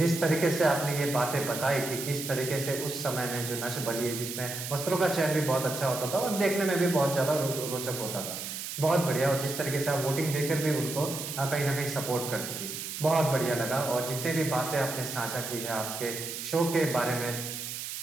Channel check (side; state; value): right; noise; hiss, 6 dB below the sound